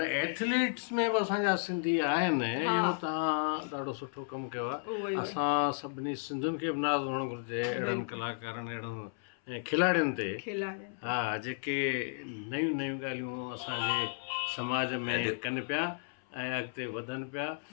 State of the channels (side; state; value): right; silent; 56 dB below the other